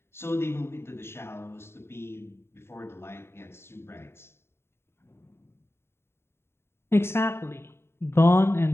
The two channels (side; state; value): right; late; 0.12 ms